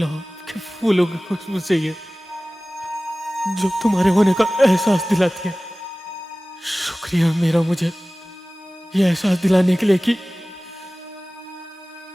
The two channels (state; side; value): normal; both; correlation 0.97